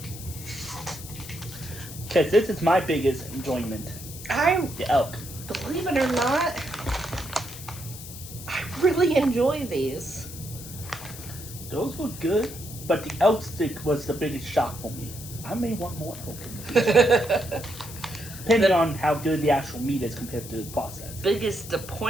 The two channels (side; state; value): left; noise; hiss, 13 dB below the sound